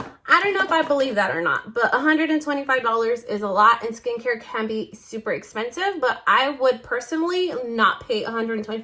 I don't know if I believe that or not, but $125 is a lot, and skincare can be super expensive, but I would personally not pay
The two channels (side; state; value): both; identical; correlation 1.00